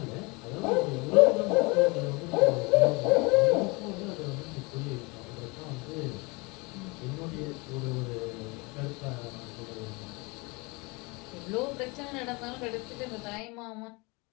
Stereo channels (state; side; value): quieter; right; 26.9 dB